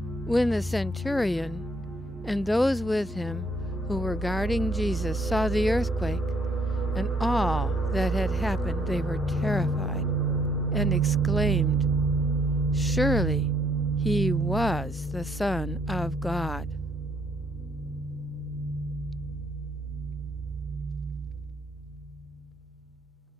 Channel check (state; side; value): normal; both; correlation 0.69